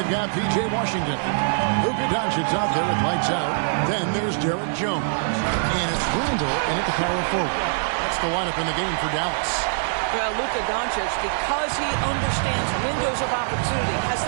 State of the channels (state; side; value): silent; left; digital silence